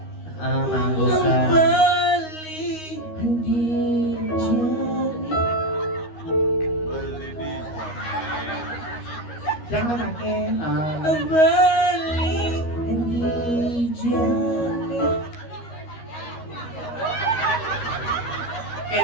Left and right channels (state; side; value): late; right; 13 ms